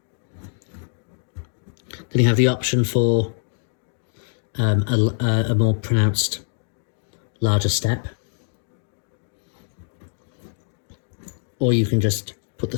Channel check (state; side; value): silent; right; digital silence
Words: Then you have the option for a more pronounced, larger step. Or you can just put the